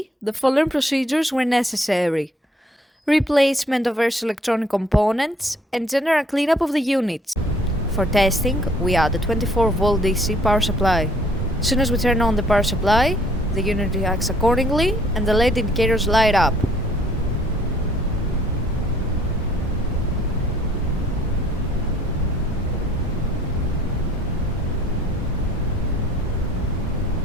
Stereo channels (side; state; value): both; normal; correlation 0.60